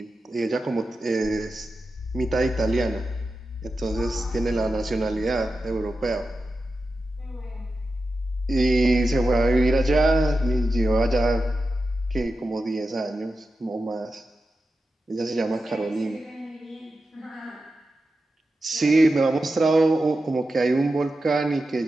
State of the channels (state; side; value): normal; both; correlation 0.91